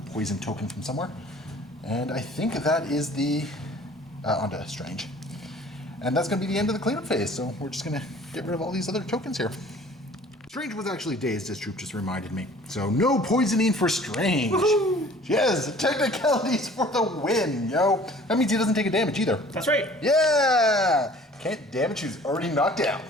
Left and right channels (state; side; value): normal; both; correlation 0.50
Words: token from somewhere. And I think that is the... onto Strange. And that's going to be the end of the cleanup phase, so we're just going to get rid of all these other tokens here. Strange was actually dazed, as Troop just reminded me. So no poisoning for Strange. Woohoo! Yes, technicalities for the win, yo. That means he doesn't take a damage either. That's right. Yeah! Can't damage who's already knocked